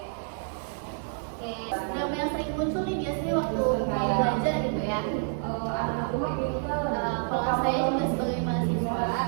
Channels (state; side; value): silent; left; 59 dB below the other